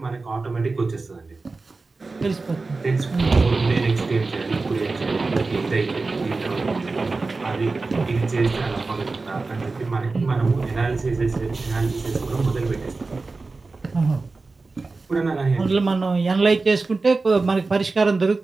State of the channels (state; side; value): quieter; left; 3.8 dB